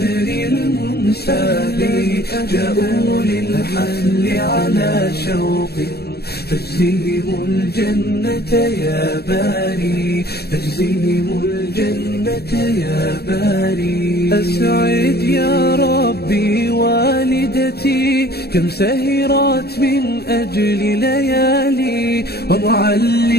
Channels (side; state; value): right; late; 0.47 ms